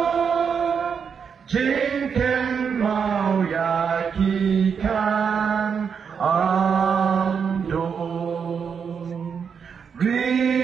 Jingken mau yakikan amdo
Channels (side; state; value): left; quieter; 6.6 dB